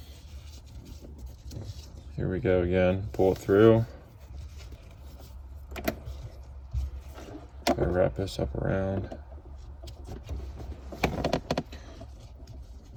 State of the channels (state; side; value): identical; both; correlation 1.00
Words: here we go again. Pull it through. Gotta wrap this up around.